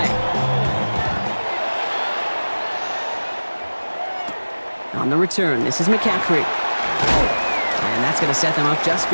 On the return, this is McCaffrey. And that's going to set them up just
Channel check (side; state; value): both; inverted; correlation -1.00